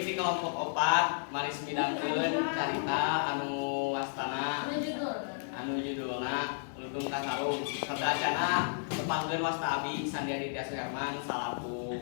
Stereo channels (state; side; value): silent; right; digital silence